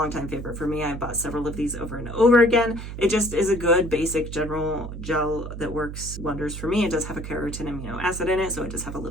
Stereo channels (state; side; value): noise; right; hum, 8 dB below the sound